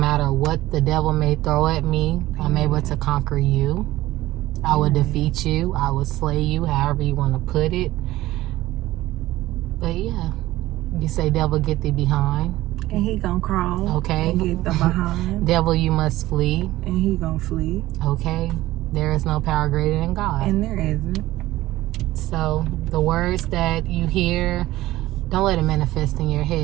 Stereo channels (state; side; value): quieter; left; 16.5 dB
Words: what the devil may throw at me, I'm able to conquer you. I will defeat you. I will slay you, however you want to put it. But yeah, you say, devil, get thee behind. And he gonna crawl. Okay. And get the behind. Devil, you must flee. And he gonna flee. Okay. There is no power greater than God. And there isn't. So the words that you hear, don't let it manifest in your